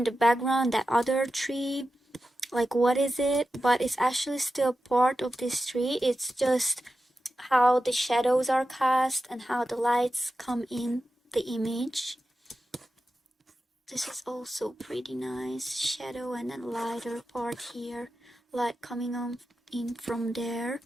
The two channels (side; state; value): both; normal; correlation 0.91